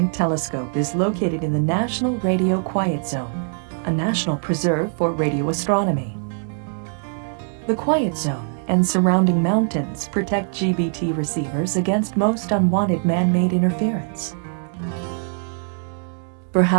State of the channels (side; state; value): left; silent; 59 dB below the other